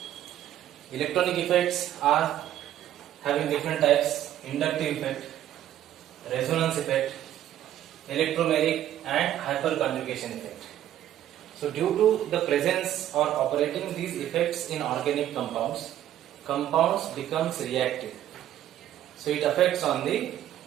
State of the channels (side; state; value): left; quieter; 12.0 dB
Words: Electronic effects are having different types: inductive effect, resonance effect, electromeric and hyperconjugation effect. So due to the presence or operating these effects in organic compounds, compounds becomes reactive. So it affects on the